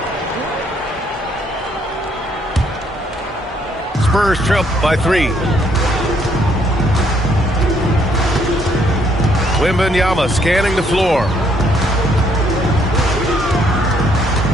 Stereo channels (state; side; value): normal; both; correlation 0.68